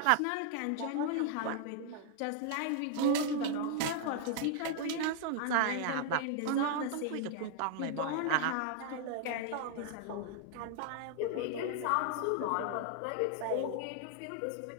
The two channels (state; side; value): different; both; correlation 0.00